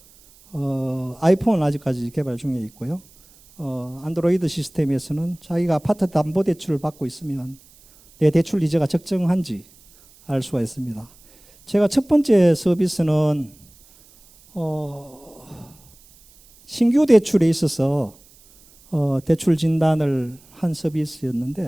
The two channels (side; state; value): right; noise; hiss, 27 dB below the sound